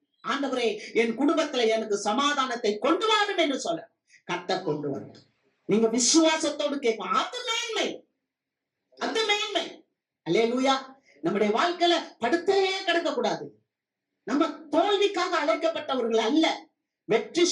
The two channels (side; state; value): both; identical; correlation 1.00